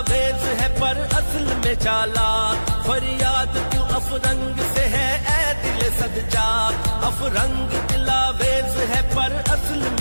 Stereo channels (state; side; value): inverted; both; correlation -1.00